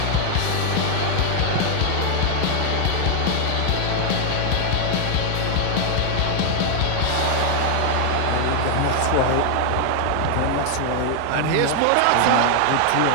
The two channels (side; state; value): both; different; correlation 0.00